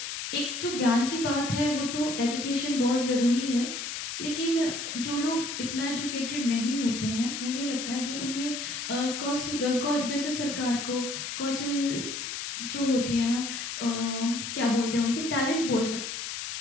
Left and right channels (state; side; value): noise; left; hiss, 5 dB below the sound